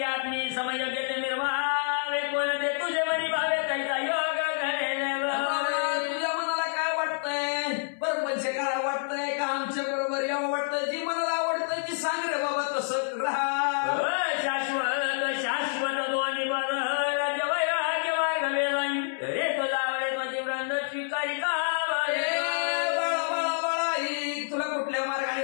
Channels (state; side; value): silent; right; 59 dB below the other